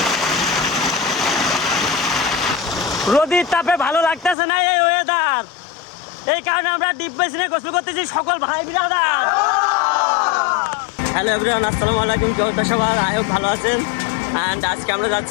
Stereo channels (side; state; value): right; drops out; at 4.4 s